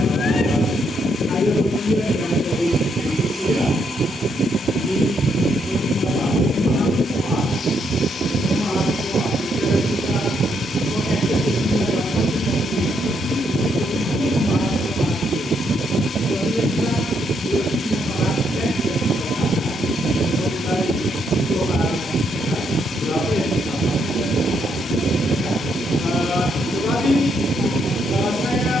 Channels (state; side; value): normal; both; correlation 0.75